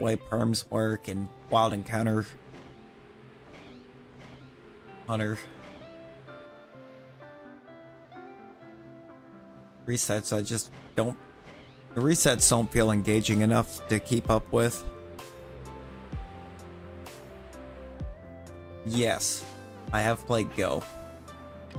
perms work, and Wild Encounter Hunter. resets, I just don't... The resets don't feel engaging enough to keep up with. Yes, I have played Go.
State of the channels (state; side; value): identical; both; correlation 1.00